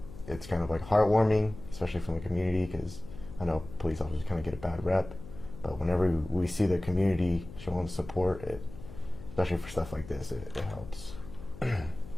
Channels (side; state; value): left; noise; hum, 15 dB below the sound